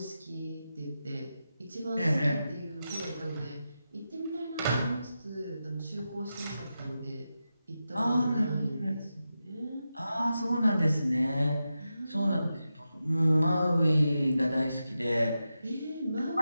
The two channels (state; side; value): inverted; both; correlation -0.90